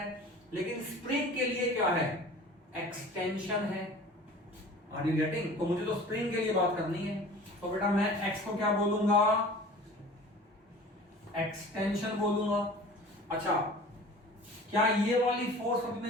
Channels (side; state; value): both; normal; correlation 0.43